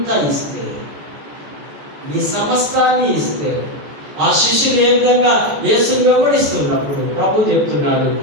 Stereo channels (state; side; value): late; left; 14 ms